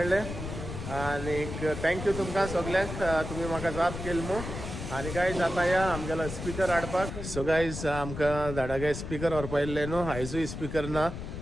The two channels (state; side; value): noise; left; rumble, 7 dB below the sound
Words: आनी थँक्यू तुमकां सगल्यांक तुमी म्हाका जाप केली मू. आनी गायज आतां या आमगेलो स्पिकर हाडपाक. सो गायज आमकां धाडागे स्पिकर व्हरपा येयल्ले न्हू आयजूय स्पिकर ना